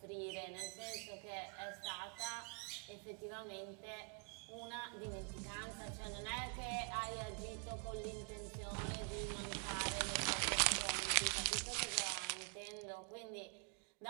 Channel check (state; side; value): quieter; left; 38.8 dB